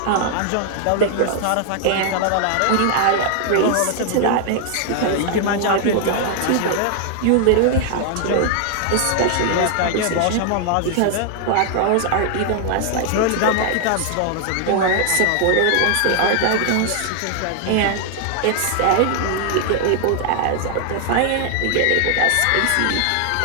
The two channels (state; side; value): different; both; correlation 0.00